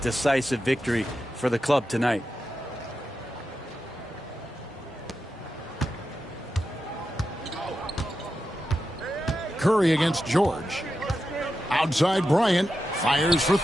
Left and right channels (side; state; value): both; normal; correlation 0.89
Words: victory for the club tonight. Curry against George. Outside Bryant. Fires for